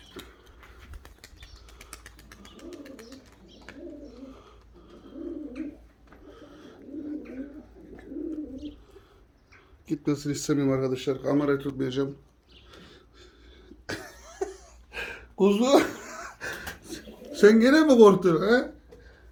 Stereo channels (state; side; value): identical; both; correlation 1.00